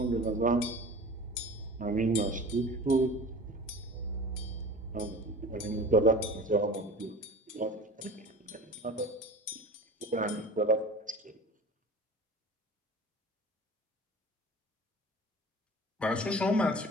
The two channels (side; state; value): both; normal; correlation 0.39